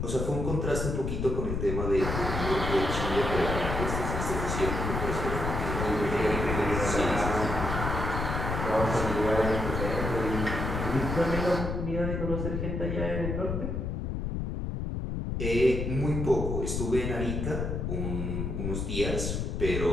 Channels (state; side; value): noise; left; rumble, 2 dB below the sound